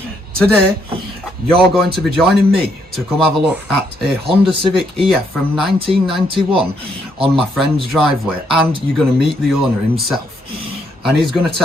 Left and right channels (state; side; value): normal; both; correlation 0.73